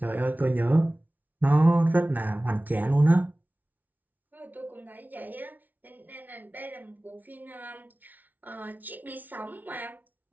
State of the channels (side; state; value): left; late; 0.080 ms